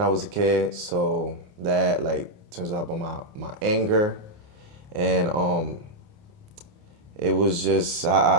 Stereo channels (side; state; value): left; late; 29 ms